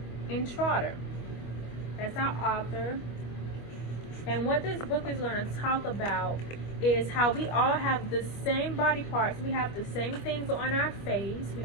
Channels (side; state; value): right; late; 25 ms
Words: Intrater. That's our author. And what this book is going to talk about is how we all have the same body parts. We have the same things on our face. We